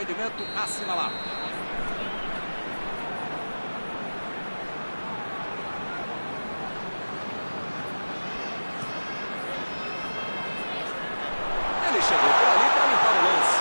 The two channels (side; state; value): both; inverted; correlation -1.00